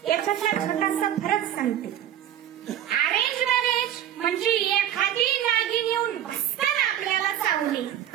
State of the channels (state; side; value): quieter; left; 10.8 dB